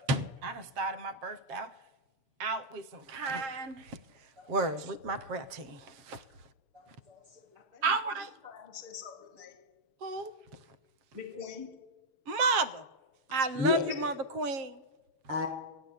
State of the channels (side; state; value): left; late; 7.4 ms